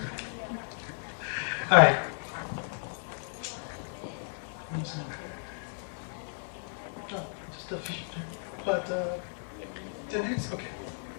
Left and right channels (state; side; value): silent; right; digital silence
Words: All right. Just a few, but 10 minutes? Okay.